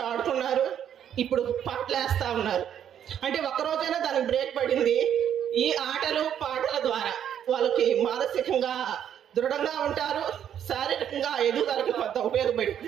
ఆడుకున్నారు, ఇప్పుడు పాటలు వేస్తూ ఉన్నారు. అంటే ఒక్కరోజైనా దానికి బ్రేక్ పడింది. ఈ ఆటలు పాటల ద్వారా వాళ్ళకి మానసికంగా దృఢంగా ఉంటారు, శారీరకంగా ఎదుగుదలకి కొంత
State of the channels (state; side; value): quieter; left; 9.5 dB